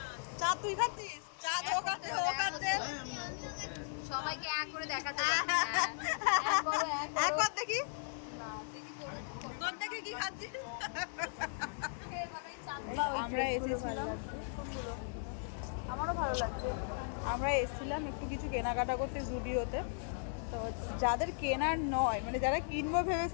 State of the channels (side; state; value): right; silent; digital silence